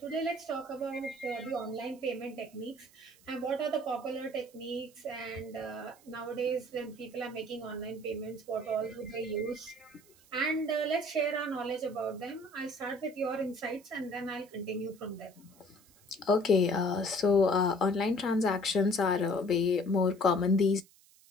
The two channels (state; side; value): noise; right; hiss, 27 dB below the sound